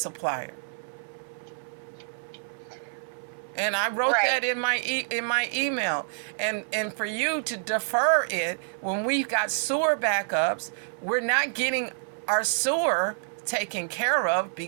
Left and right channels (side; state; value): left; silent; 60 dB below the other